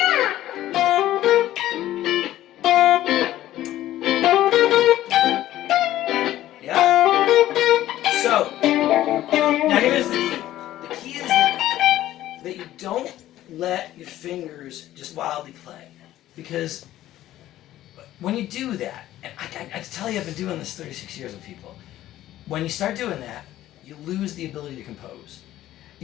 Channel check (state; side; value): quieter; right; 13.9 dB